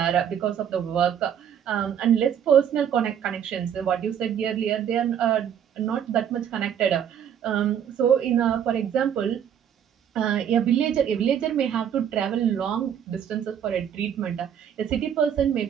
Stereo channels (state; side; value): quieter; left; 9.0 dB